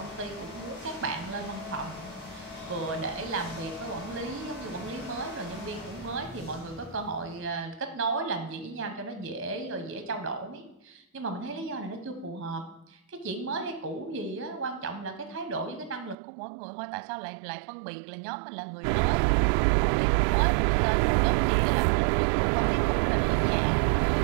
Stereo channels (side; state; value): left; drops out; at 16.2 s